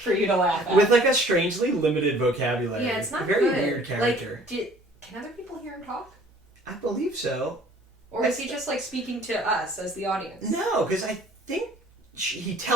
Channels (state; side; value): normal; both; correlation 0.53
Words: for you to laugh at. With like a strangely limited vocabulary. Yeah, it's not very good. Weird character. Can other people hear him talk? I believe so. Or is he just like speaking to us as the audience? No, because I think he